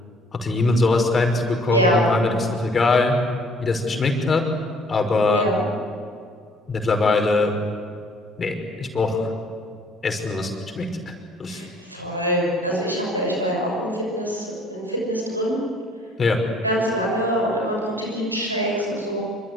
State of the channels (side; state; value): both; normal; correlation 0.58